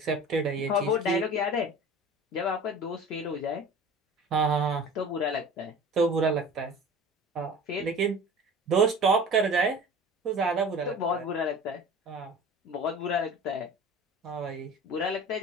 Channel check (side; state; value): both; normal; correlation 0.40